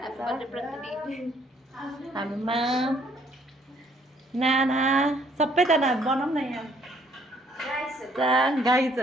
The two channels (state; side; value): normal; both; correlation 0.64